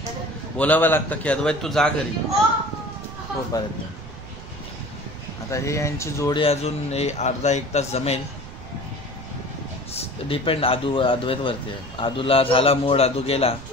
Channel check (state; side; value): noise; right; rumble, 14 dB below the sound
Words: बोलावं लागतं की अद्वैत तू जा घरी. हो पर्यंत. आता हे यांची जोडी अजून अर्धा-1 तास जमेल. डिपेंड अद्वैतवरती आहे. आदूला झाला मूड, आदू गेला